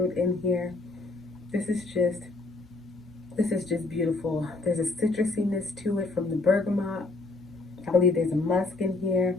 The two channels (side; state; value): right; quieter; 3.4 dB